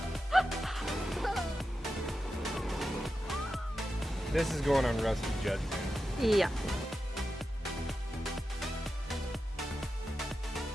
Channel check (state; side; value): normal; both; correlation 0.90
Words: This is going on Rusty Judgment. Yeah.